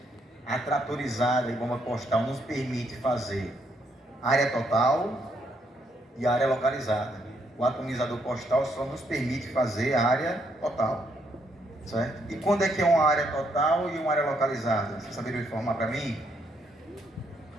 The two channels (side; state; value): both; normal; correlation 0.74